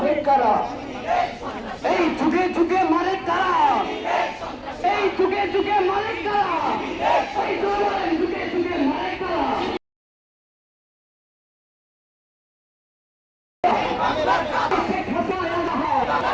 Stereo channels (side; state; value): both; identical; correlation 1.00